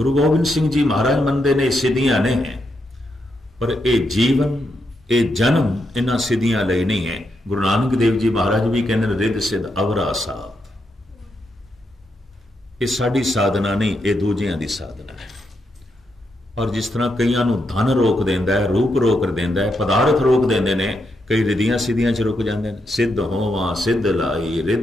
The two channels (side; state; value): both; normal; correlation 0.82